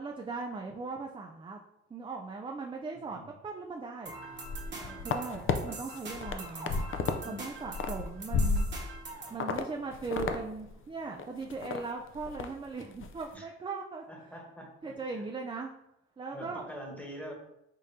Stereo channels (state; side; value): normal; both; correlation 0.40